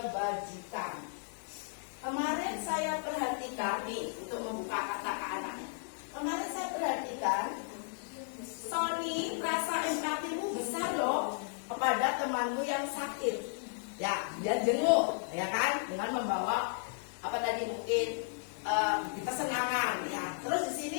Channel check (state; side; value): silent; right; digital silence